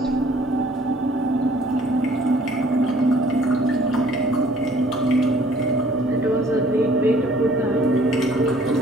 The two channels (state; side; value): normal; both; correlation 0.57